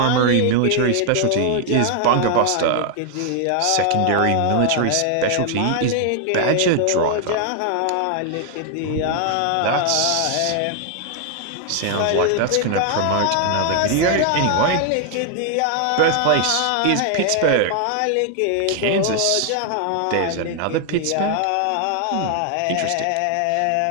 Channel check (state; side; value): different; both; correlation 0.00